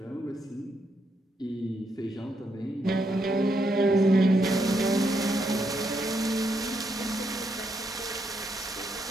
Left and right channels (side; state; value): both; normal; correlation 0.78